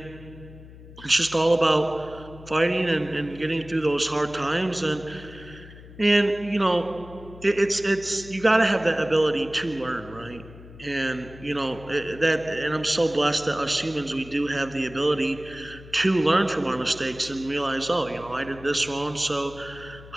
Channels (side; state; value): left; noise; hum, 18 dB below the sound